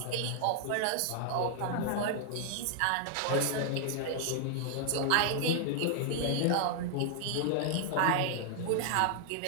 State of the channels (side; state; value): both; different; correlation -0.01